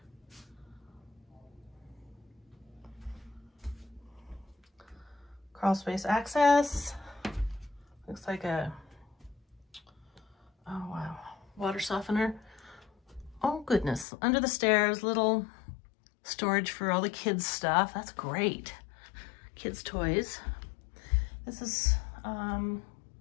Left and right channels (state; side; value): drops out; right; at 14.1 s